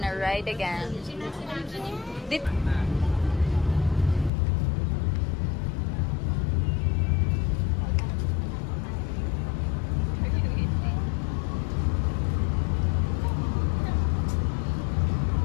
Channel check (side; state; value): right; drops out; at 4.3 s